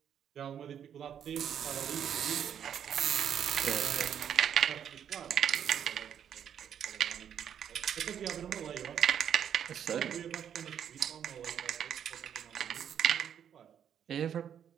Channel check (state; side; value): quieter; left; 8.9 dB